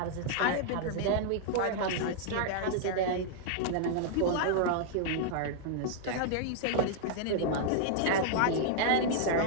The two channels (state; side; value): different; both; correlation -0.01